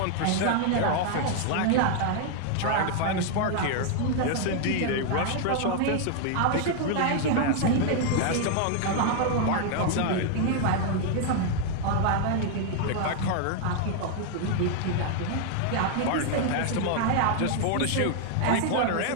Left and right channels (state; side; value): different; both; correlation 0.00